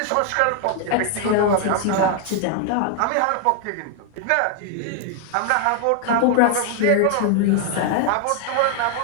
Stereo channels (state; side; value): different; both; correlation 0.00